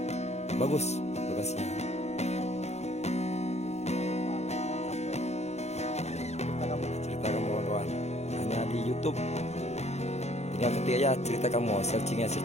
bagus lokasinya. Cerita Kamu kawan-kawan, hanya di YouTube. Tinggal ketik aja Cerita Kamu, searchingnya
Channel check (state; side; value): late; right; 0.32 ms